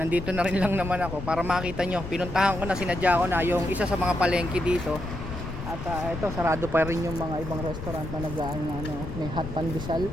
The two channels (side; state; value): left; noise; rumble, 8 dB below the sound